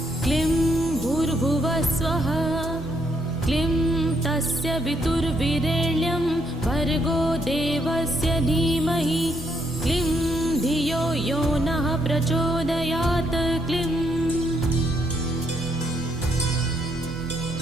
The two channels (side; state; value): both; normal; correlation 0.74